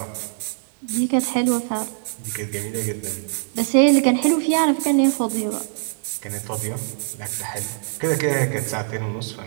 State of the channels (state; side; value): silent; left; digital silence